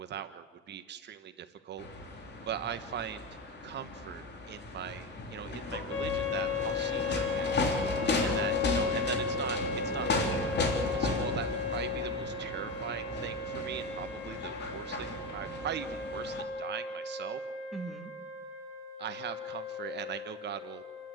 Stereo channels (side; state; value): both; normal; correlation 0.18